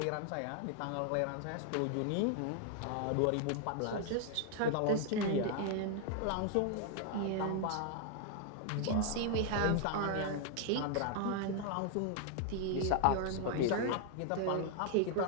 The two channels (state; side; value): different; both; correlation 0.00